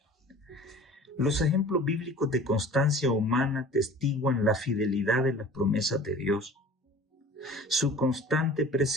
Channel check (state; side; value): normal; both; correlation 0.44